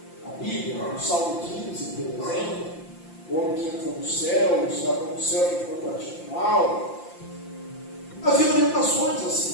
a Bíblia, no Salmo 15, por exemplo, o homem que entrou no céu, estava no céu que foi praticado mal. Havia orientações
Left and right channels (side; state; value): right; late; 5.8 ms